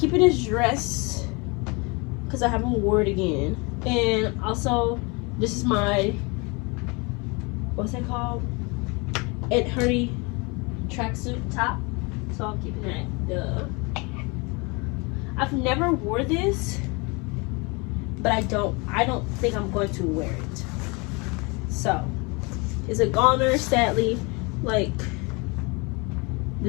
this dress because I haven't worn it again. And also, this is my, what's that called? Ed Hardy tracksuit top. So I'm keeping that. I've never wore this, but I don't think I'm going to wear it. So it's a goner, sadly. Like,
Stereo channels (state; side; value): quieter; right; 28.7 dB